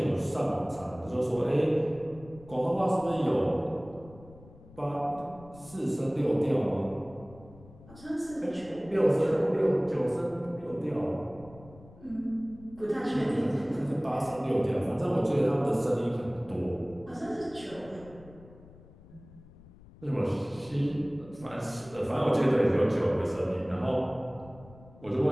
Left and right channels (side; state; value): left; noise; rumble, 21 dB below the sound